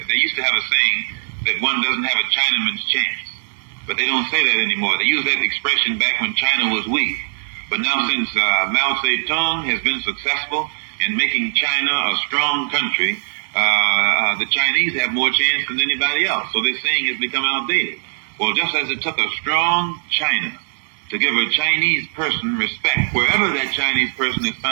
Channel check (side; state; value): left; silent; digital silence